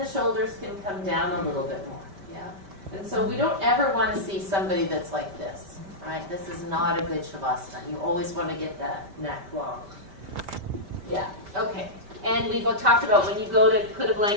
shoulders can come down a little bit more, yeah? And so we don't ever want to see somebody that's like this, right? This is not a good Shavasana. You always want to get that neck long. Yeah, okay. And we've talked about when you go to put a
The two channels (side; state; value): left; late; 5.1 ms